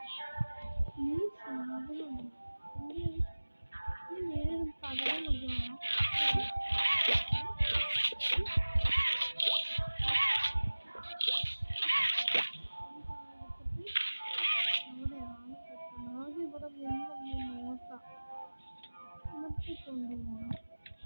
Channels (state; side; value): inverted; both; correlation -1.00